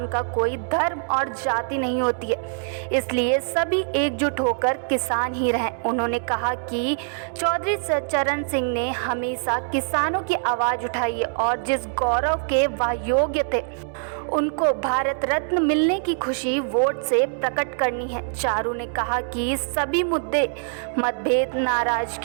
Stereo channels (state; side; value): silent; left; 63 dB below the other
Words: का कोई धर्म और जाति नहीं होती है, इसलिए सभी एकजुट होकर किसान ही रहें। उन्होंने कहा कि चौधरी चरण सिंह ने हमेशा किसानों की आवाज़ उठाई है और जिस गौरव के वह योग्य थे उनको भारत रत्न मिलने की खुशी वोट से प्रकट करनी है। चारू ने कहा कि सभी मुद्दे मतभेद